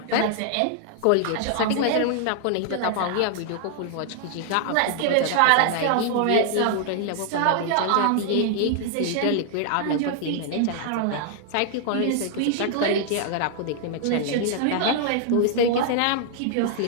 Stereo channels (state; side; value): different; both; correlation 0.00